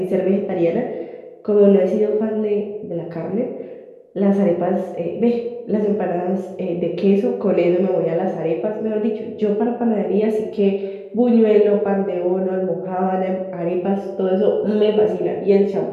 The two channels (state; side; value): identical; both; correlation 1.00